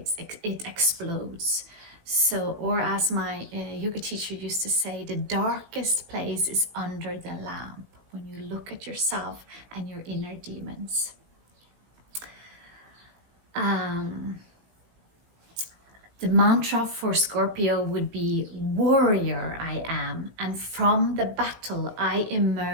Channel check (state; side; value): late; left; 18 ms